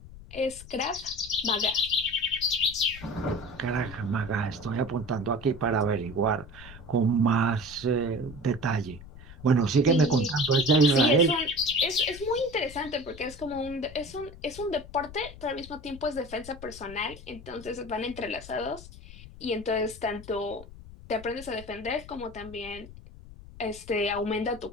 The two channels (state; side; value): noise; left; rumble, 17 dB below the sound